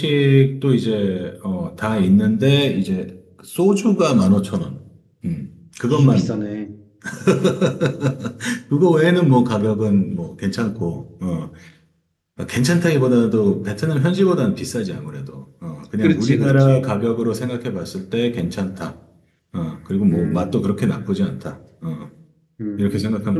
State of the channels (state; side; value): identical; both; correlation 1.00